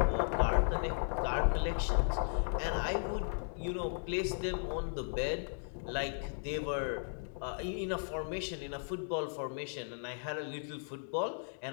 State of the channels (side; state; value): right; silent; digital silence